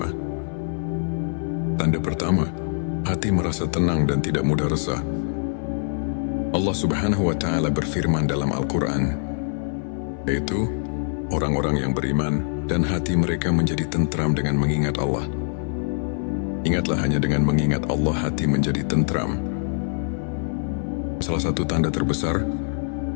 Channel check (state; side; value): silent; right; 61 dB below the other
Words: Tanda pertama, hati merasa tenang dan tidak mudah resah. Allah Subhanahu wa Ta'ala berfirman dalam Al-Quran, yaitu orang-orang yang beriman dan hati mereka menjadi tentram dengan mengingat Allah. Ingatlah, hanya dengan mengingat Allah hati menjadi tentram. Salah satu tanda terbesar